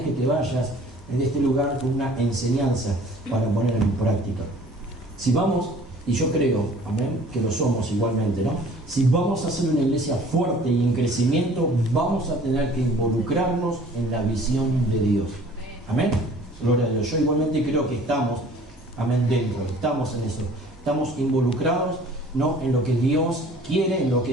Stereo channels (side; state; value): both; normal; correlation 0.51